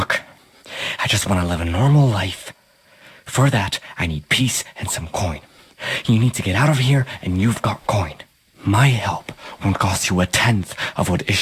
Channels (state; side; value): identical; both; correlation 1.00